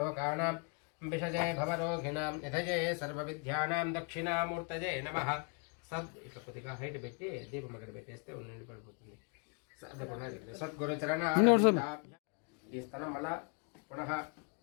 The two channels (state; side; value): quieter; right; 35.3 dB